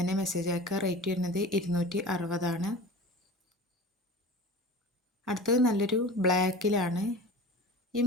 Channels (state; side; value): normal; both; correlation 0.36